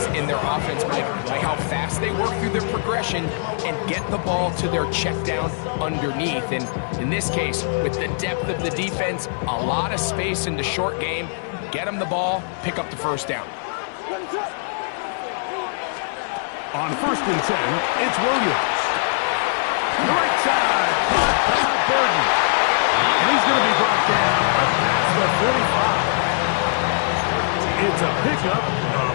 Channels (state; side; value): silent; right; 64 dB below the other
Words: in their offense, Mike, by how fast they work through their progression and get the ball to their check down underneath. And in this case, with the depth of the defense, a lot of space in the short game, get them the ball, pick up the first down. On 1st and 10, it's Williams. The right side, caught by Burden. And he's going to be brought down up past the 45. It's a pickup of